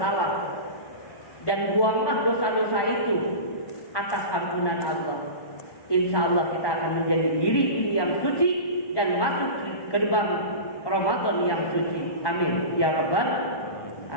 dan buanglah dosa-dosa itu atas ampunan Allah. Insya Allah kita akan menjadi diri yang suci dan masuk ke gerbang Ramadan yang suci. Amin ya rabbal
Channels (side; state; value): right; late; 1.2 ms